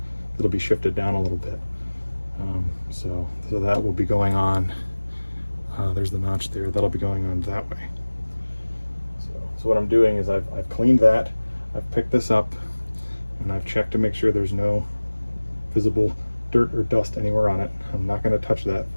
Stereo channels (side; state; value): both; inverted; correlation -1.00